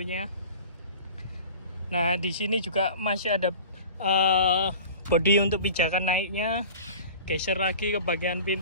Nah, di sini juga masih ada bodi untuk pijakan naiknya. Geser lagi ke bagian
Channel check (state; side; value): inverted; both; correlation -0.40